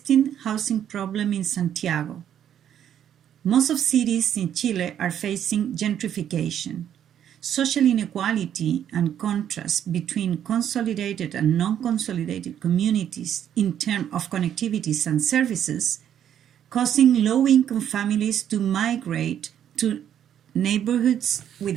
housing problem in Santiago. Most of cities in Chile are facing gentrification. Social inequality and contrast between consolidated and non-consolidated communities in terms of connectivities and services, causing low-income families to migrate to neighborhoods with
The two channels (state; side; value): quieter; left; 9.9 dB